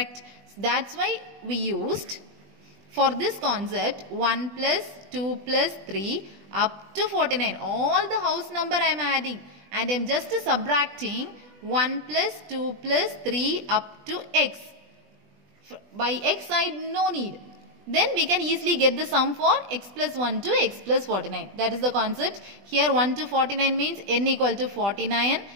That's why we used for this concept 1 plus 2 plus 3 up to 49. All the house number I am adding and I am just subtracting 1 plus 2 plus 3 up to x. By x side no need. Then we can easily get the sum for x plus 1 to x plus 49. That is the concept. Here 1 to 49 means n equal to 49.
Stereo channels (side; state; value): left; late; 20 ms